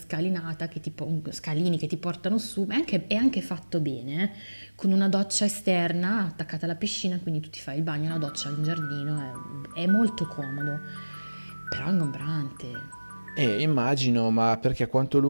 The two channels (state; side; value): inverted; both; correlation -1.00